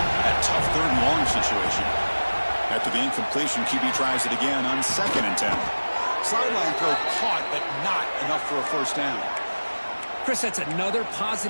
that tough 3rd and long situation. After the incompletion, QB tries it again on 2nd and 10. Sideline throw caught, but not enough for a first down. Chris, that's another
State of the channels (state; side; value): inverted; both; correlation -1.00